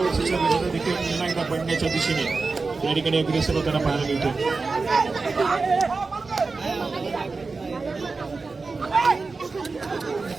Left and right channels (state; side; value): quieter; left; 4.1 dB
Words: विजेता देखील पुन्हा एकदा पडण्याच्या दिशेने या ठिकाणी अग्रेसर होताना पाहायला मिळतोय.